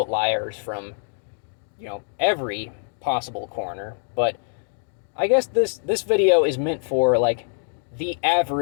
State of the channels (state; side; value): silent; right; digital silence